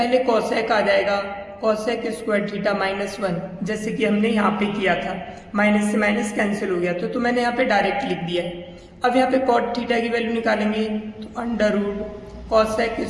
कोसेक आ जाएगा, कोसेक स्क्वायर थीटा -1, जैसे कि हमने यहाँ पे किया था, माइनस से माइनस कैंसिल हो गया तो मैंने यहाँ पे डायरेक्ट लिख दिया है। अब यहाँ पे कॉट थीटा की वैल्यू निकालेंगे तो under root cosec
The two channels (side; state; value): both; identical; correlation 1.00